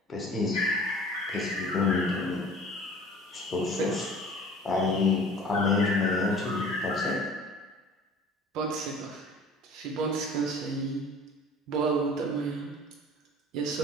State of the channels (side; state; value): both; normal; correlation 0.46